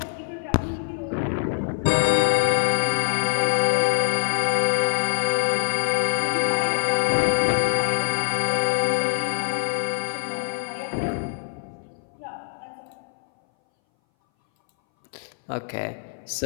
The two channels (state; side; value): silent; right; 60 dB below the other